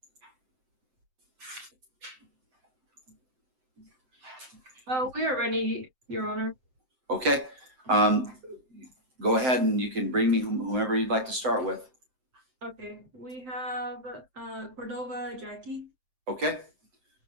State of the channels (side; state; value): left; late; 7.7 ms